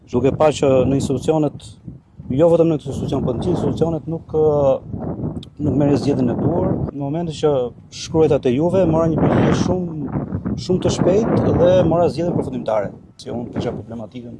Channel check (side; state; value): both; identical; correlation 1.00